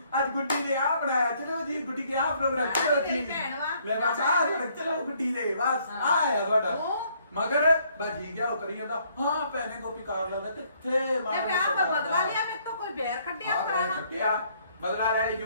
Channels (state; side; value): inverted; both; correlation -0.66